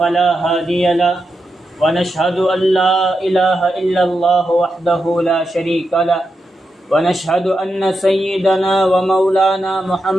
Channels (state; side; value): normal; both; correlation 0.87